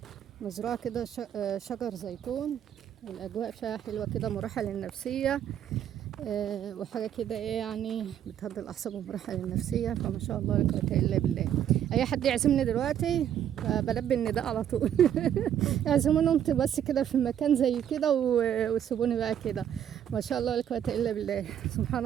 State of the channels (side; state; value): left; quieter; 9.9 dB